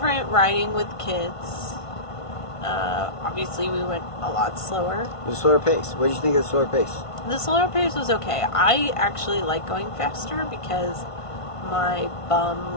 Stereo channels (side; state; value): right; late; 1.5 ms